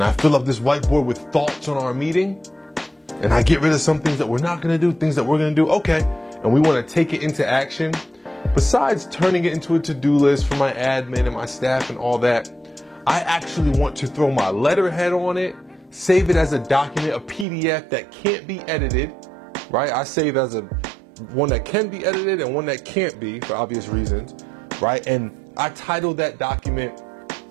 I fill up this whiteboard with thoughts on our meeting, and I get rid of some things that we're not going to do, things that we're going to do, okay, and we want to take it into action. Besides turning it into a to-do list for my admin and my staff and all that, I actually want to throw my letterhead on it, save it as a document, a PDF that can't be edited, right? I save as one that can be edited and one that can't be, for obvious reasons, right? And I titled that document,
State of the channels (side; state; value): left; drops out; at 17.4 s